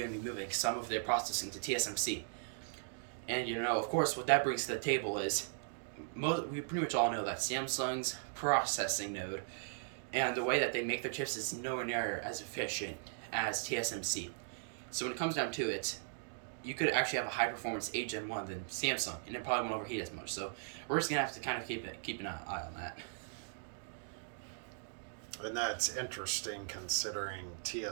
to be moving some of their processing to TSMC. And of course, what that brings to the table is we pretty much all know that Samsung's processing node and the way that they make their chips is nowhere near as efficient as TSMC. So when it comes down to it, you could actually have a high performance 8 Gen 1 than Samsung, and it probably won't overheat as much. So we're just gonna have to kind of keep an eye on that. And that's interesting considering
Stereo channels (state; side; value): silent; left; digital silence